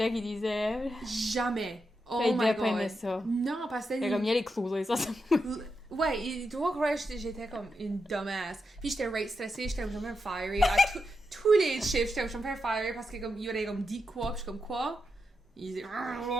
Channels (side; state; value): both; normal; correlation 0.86